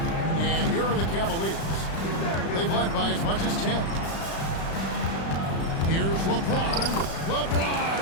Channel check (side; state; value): right; late; 36 ms